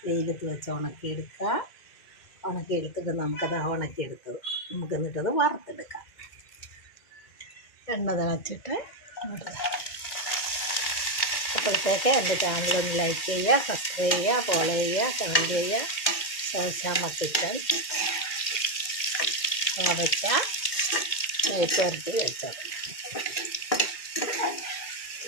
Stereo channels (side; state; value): right; late; 2.5 ms